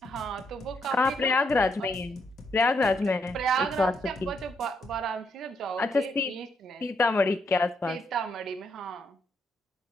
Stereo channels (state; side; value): normal; both; correlation 0.76